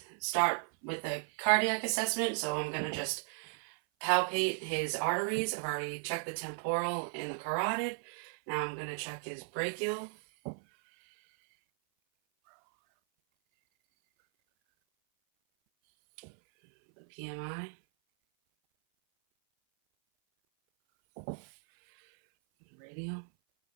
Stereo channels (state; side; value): silent; left; 55 dB below the other